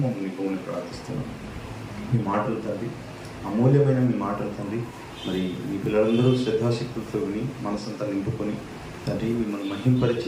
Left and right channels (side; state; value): both; identical; correlation 1.00